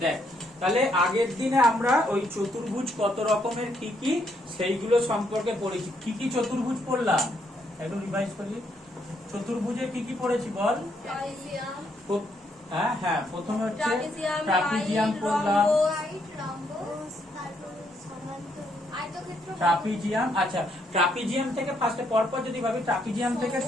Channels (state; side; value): normal; both; correlation 0.74